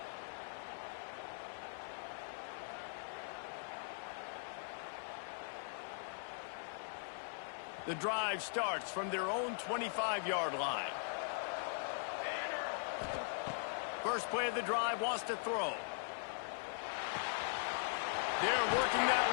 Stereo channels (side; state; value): right; silent; 51 dB below the other